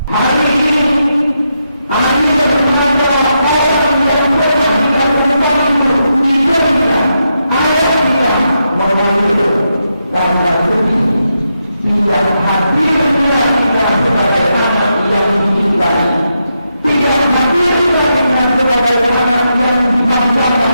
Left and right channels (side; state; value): both; inverted; correlation -0.84